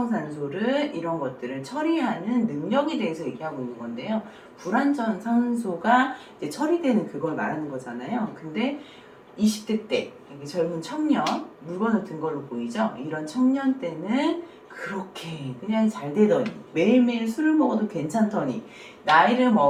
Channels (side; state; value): both; identical; correlation 1.00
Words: 이런 것들을 처리하는 능력에 대해서 얘기하고 있는 건데요. 불완전 산소가 이제 처리되는 그걸 말하는 거잖아요. 근데 20대 때 젊은 청년, 물건을 든 걸로 보이죠? 이런 청년 때는 그렇게 그냥 잘 되더니 매일매일 술을 먹어도 괜찮더니 나이를